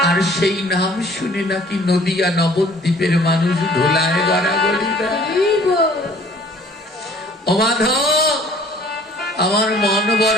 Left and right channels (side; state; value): both; normal; correlation 0.54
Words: আর সেই নাম শুনে নাকি নদিয়া নবদ্বীপের মানুষ ধোলায় গড়াগড়ি দেয়। ও মাধব, আমার মন